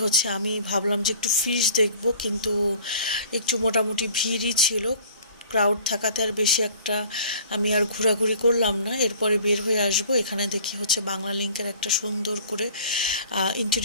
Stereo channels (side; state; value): both; inverted; correlation -0.49